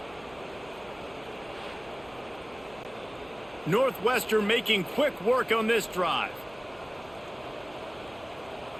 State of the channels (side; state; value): right; noise; hum, 23 dB below the sound